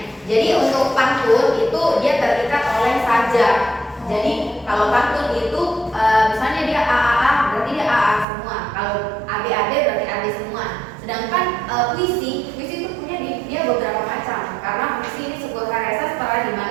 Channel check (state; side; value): drops out; left; at 8.2 s